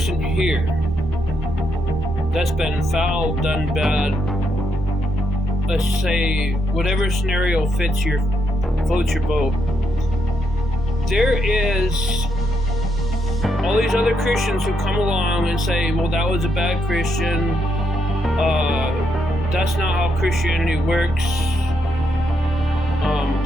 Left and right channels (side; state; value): both; normal; correlation 0.79